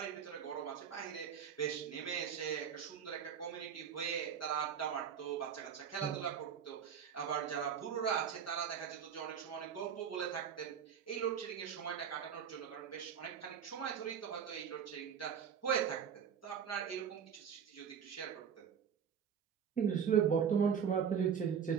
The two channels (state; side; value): quieter; left; 7.7 dB